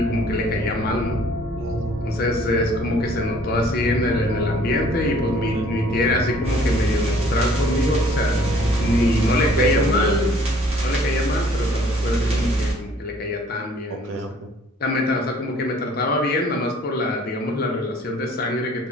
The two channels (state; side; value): normal; both; correlation 0.56